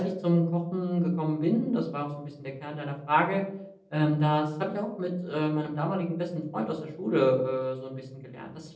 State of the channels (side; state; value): both; identical; correlation 1.00